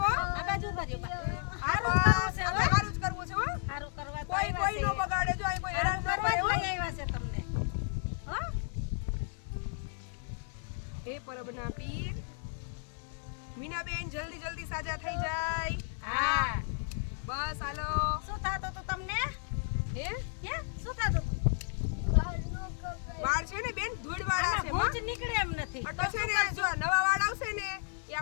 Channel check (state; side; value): silent; right; 56 dB below the other